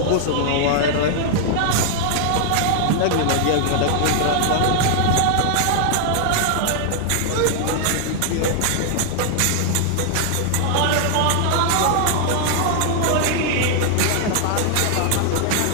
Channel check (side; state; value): both; different; correlation 0.00